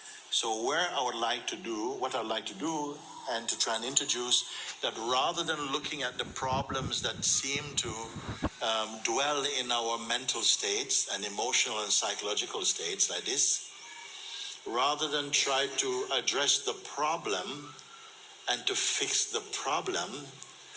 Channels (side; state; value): both; identical; correlation 1.00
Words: So what I'd like to do, and to try and introduce that rather than looking at the problems that seem to dwell in our mental states and emotional and psychological states like this, rather than try to address the problem and to fix the problem,